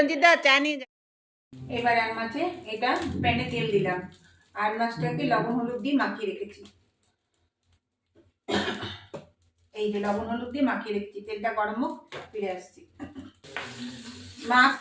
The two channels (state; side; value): identical; both; correlation 1.00